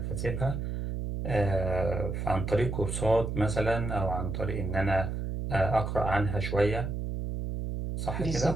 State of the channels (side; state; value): right; noise; hum, 3 dB below the sound